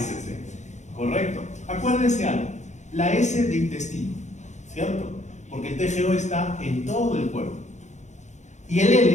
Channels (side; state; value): right; late; 0.34 ms